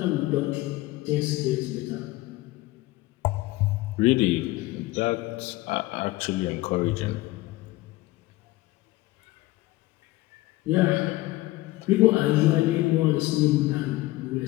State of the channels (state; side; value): quieter; right; 18.7 dB